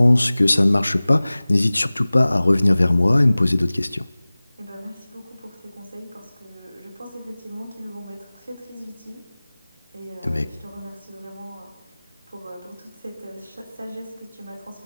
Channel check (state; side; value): inverted; both; correlation -0.99